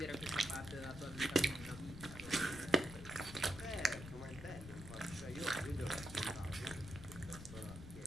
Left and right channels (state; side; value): noise; left; rumble, 12 dB below the sound